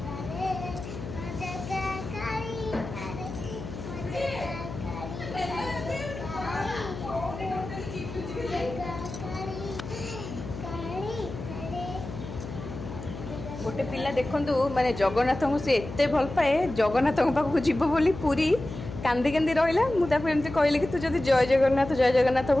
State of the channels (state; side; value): noise; left; hum, 10 dB below the sound